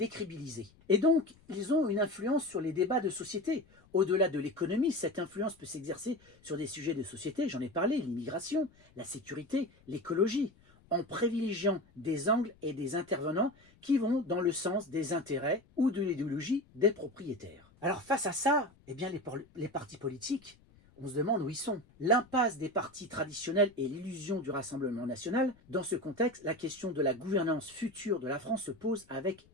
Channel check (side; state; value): left; noise; rumble, 29 dB below the sound